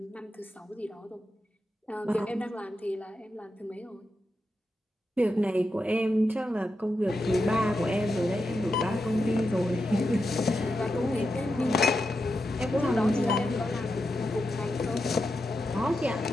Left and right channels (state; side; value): normal; both; correlation 0.88